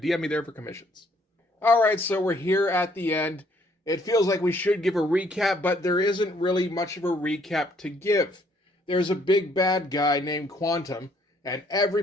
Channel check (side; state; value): both; normal; correlation 0.66